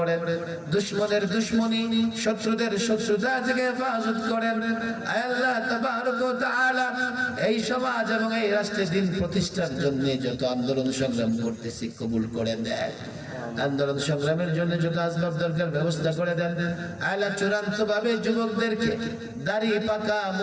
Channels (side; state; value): both; identical; correlation 1.00